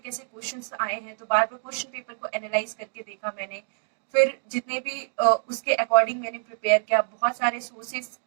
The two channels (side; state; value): left; silent; digital silence